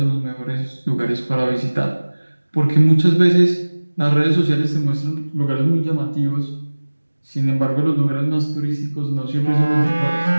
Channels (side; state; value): both; inverted; correlation -1.00